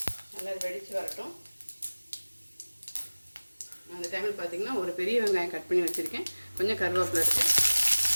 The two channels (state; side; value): inverted; both; correlation -1.00